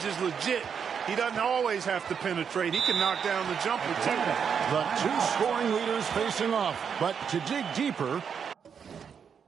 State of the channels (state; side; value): quieter; left; 7.0 dB